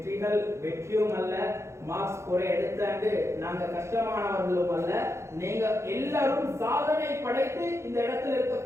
வெற்றியும் அல்ல, மார்க்ஸ் குறை எடுத்தாண்டு நாங்க கஷ்டமானவர்களும் அல்ல. நீங்க எல்லாரும் சாதனை படைத்து இந்த இடத்துல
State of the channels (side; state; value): left; late; 0.13 ms